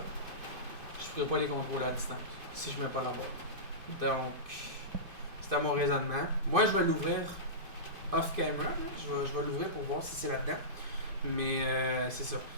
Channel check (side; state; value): left; late; 2.5 ms